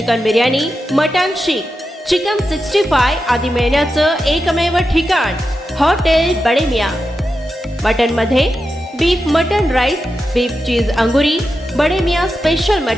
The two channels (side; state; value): both; normal; correlation 0.90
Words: biryani, mutton seekh, chicken 65 आदी मिळण्याचं एकमेव ठिकाण हॉटेल बडे मियां। मटन मध्ये beef mutton rice, beef cheese angoori, Bade Miyan special